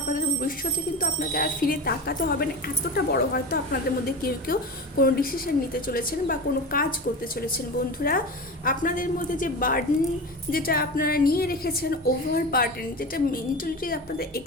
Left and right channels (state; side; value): normal; both; correlation 0.28